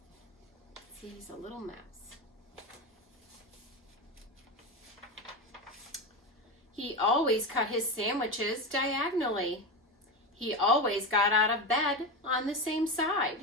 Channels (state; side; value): normal; both; correlation 0.18